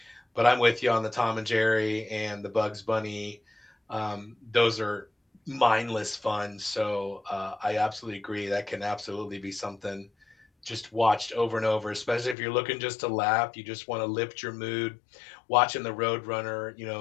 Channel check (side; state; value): right; drops out; at 12.4 s